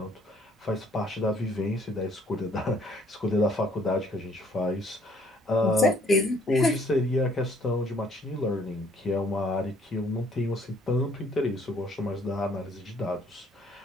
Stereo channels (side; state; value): both; normal; correlation 0.63